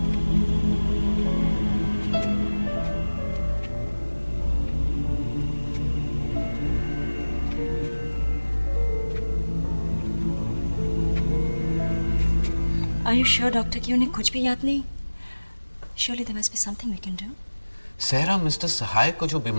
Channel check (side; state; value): both; inverted; correlation -1.00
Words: Are you sure, Doctor, कि उन्हें कुछ भी याद नहीं? Surely there must be something we can do. सहरा, मिस्टर सहाय को जो